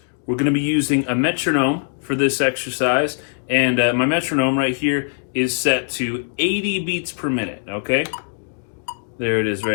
We're going to be using a metronome for this exercise, and my metronome right here is set to 80 beats per minute, okay? There it is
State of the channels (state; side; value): silent; right; digital silence